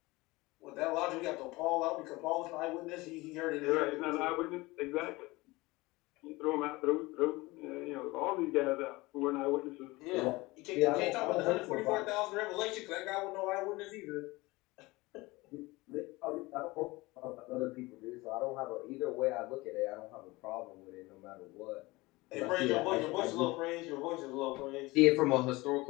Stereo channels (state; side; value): quieter; right; 21.7 dB